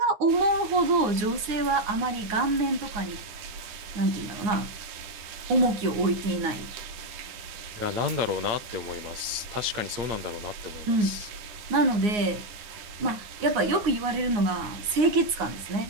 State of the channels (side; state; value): left; late; 9.6 ms